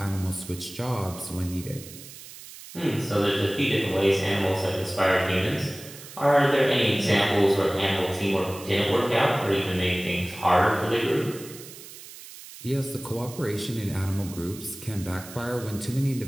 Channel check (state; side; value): noise; right; hiss, 16 dB below the sound